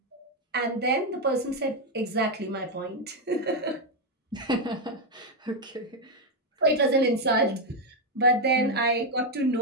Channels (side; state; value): both; normal; correlation 0.03